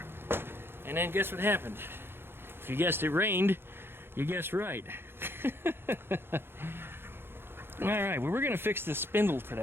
And then guess what happened? If you guessed it rained, you guessed right. Alright, well, we're going to fix this spindle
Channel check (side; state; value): left; late; 0.11 ms